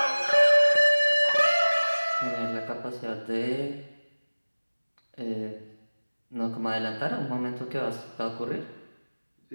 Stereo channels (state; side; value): inverted; both; correlation -1.00